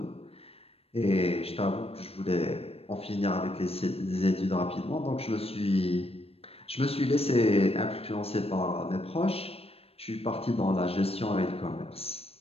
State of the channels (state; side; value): late; right; 0.28 ms